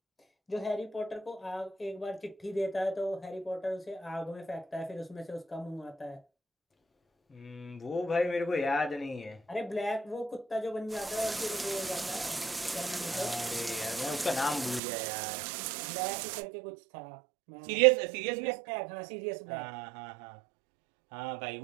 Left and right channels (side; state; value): left; drops out; at 14.8 s